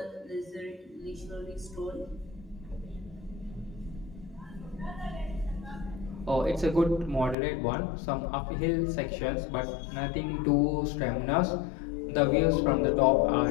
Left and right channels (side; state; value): right; drops out; at 7.4 s